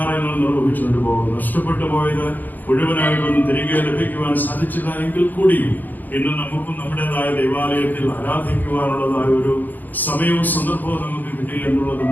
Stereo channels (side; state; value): right; late; 0.085 ms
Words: നിർവഹിച്ചുകൊണ്ട് പോകും. നഷ്ടപ്പെട്ടു പോയത് മുഴുവനായിട്ടൊന്നും തിരികെ ലഭിക്കുവാൻ സാധിച്ചില്ല എങ്കിൽ കൂടിയും ഇന്ന് നമുക്കും നമ്മുടേതായ ദൈവാലയത്തിൽ ആരാധിക്കുവാനുള്ളതായ ഒരു സമയവും സന്ദർഭവും നമുക്ക് കിട്ടി എന്നുള്ളതും